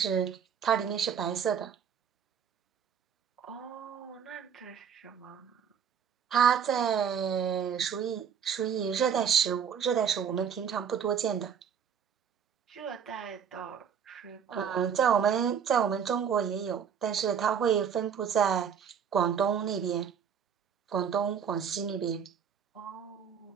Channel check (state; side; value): quieter; left; 7.6 dB